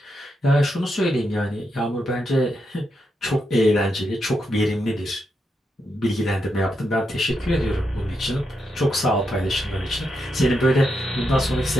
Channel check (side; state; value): both; normal; correlation 0.83